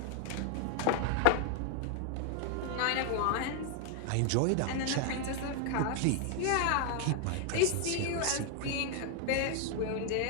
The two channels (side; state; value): both; different; correlation 0.00